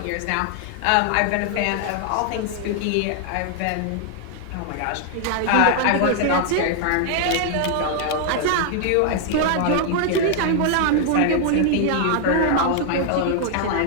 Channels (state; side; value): different; both; correlation 0.00